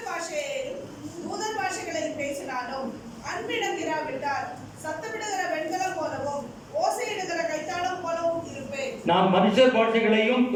பாஷையிலும் தூதர் பாஷைகளில் பேசினாலும் அன்பிடம் இராவிட்டால் சத்தமிடுகிற வெண்கலம் போலவும் ஓசையிடுகிற கைத்தாளம் போலவும் இருப்பேன். நான் மனுஷர் பாஷைகளையும்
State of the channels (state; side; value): identical; both; correlation 1.00